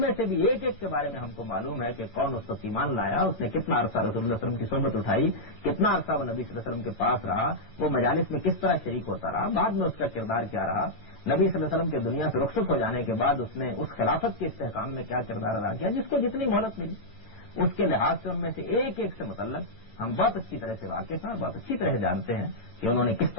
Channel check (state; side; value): late; right; 8.9 ms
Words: میں سے بھی ایک ایک کے بارے میں ہم کو معلوم ہے کہ کون اس وقت ایمان لایا، اس نے کتنا عرصہ رسول اللہ صلی اللہ علیہ وسلم کی صحبت اٹھائی، کتنا عرصہ وہ نبی صلی اللہ علیہ وسلم کے پاس رہا، وہ مجالس میں کس طرح شریک ہوتا رہا، بعد میں اس کا کردار کیا رہا، نبی صلی اللہ علیہ وسلم کے دنیا سے رخصت ہو جانے کے بعد اس نے اس خلافت کے استحکام میں کیا کردار ادا کیا، جس کو جتنی مہلت ملی اس کے لحاظ سے ان میں سے ایک ایک سے متعلق ہم بہت اچھی طرح سے واقف ہیں اور بہت اچھی طرح جانتے ہیں کہ انہوں نے کس